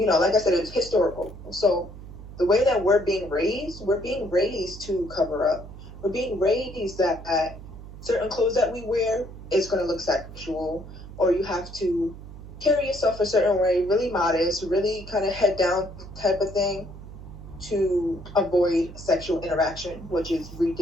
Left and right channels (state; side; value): noise; right; hum, 14 dB below the sound